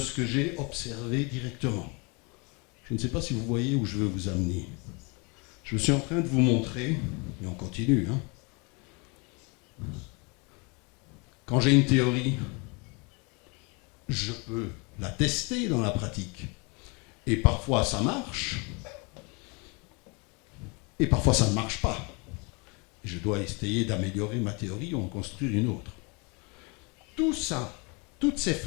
que j'ai observé directement. Je ne sais pas si vous voyez où je veux vous amener. Je suis en train de vous montrer, et on continue, quand j'ai une théorie, je peux la tester dans la pratique. Et parfois ça marche, et parfois ça ne marche pas. Je dois essayer d'améliorer ma théorie ou en construire une autre. Tout ça, toutes ces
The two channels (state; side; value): quieter; right; 30.8 dB